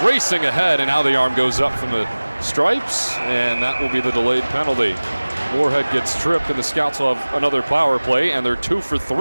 racing ahead, and now the arm goes up from the stripes, and that will be the delayed penalty. Moorhead gets tripped, and the Scouts will have another power play, and they're 2 for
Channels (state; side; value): inverted; both; correlation -1.00